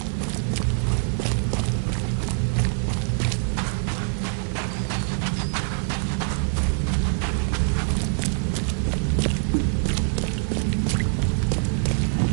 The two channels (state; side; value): silent; left; 62 dB below the other